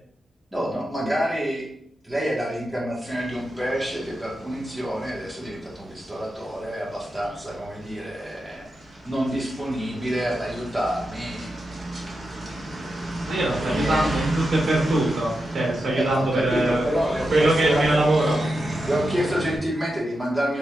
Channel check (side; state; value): both; normal; correlation 0.88